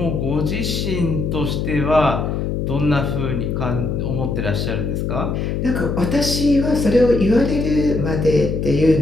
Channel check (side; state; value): left; noise; hum, 1 dB below the sound